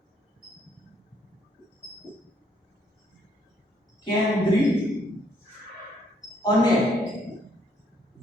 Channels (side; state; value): both; normal; correlation 0.69